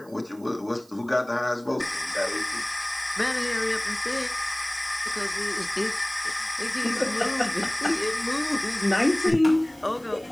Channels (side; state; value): right; noise; hiss, 27 dB below the sound